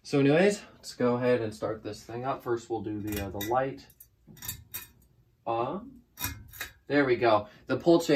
So anyways, let's go ahead and start this thing up. First, we'll do the light on. There we go. The pull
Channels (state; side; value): identical; both; correlation 1.00